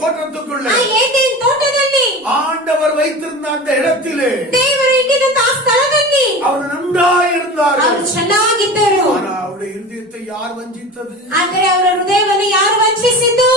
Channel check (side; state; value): both; normal; correlation 0.32